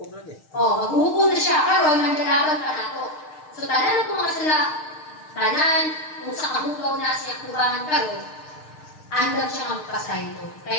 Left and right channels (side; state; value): right; late; 6.5 ms